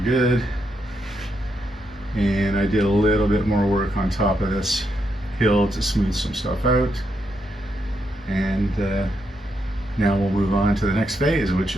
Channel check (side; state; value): both; normal; correlation 0.81